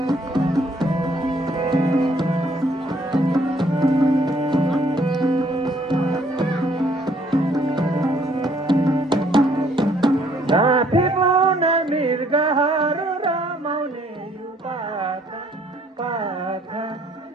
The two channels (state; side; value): normal; both; correlation 0.64